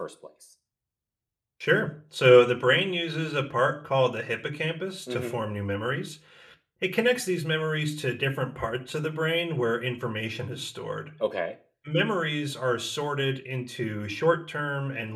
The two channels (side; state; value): both; identical; correlation 1.00